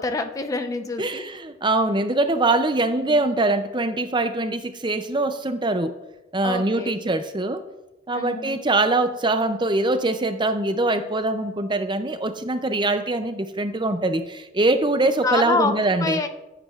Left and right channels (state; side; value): normal; both; correlation 0.38